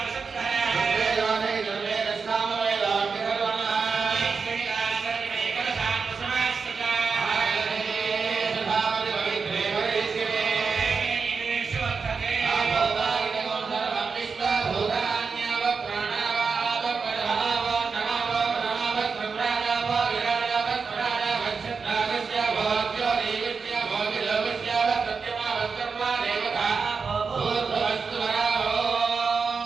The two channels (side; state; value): left; quieter; 5.1 dB